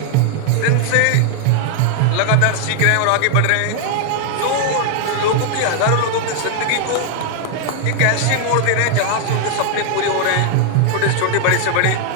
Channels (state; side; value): different; both; correlation 0.00